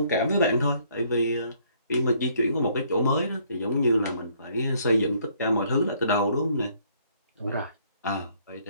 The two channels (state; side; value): inverted; both; correlation -0.65